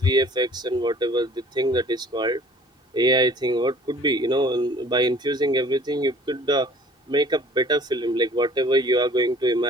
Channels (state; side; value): normal; both; correlation 0.51